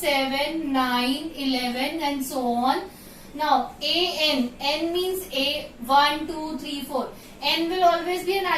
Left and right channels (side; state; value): both; identical; correlation 1.00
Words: 9, 11 and so on. Now AN, N means A, 1, 2, 3, 4. N will always be a